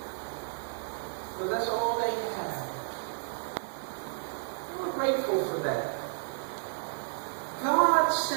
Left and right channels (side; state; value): left; silent; digital silence